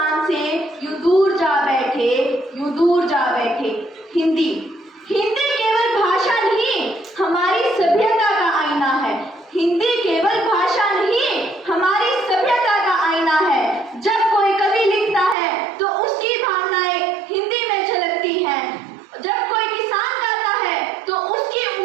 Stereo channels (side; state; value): left; drops out; at 15.4 s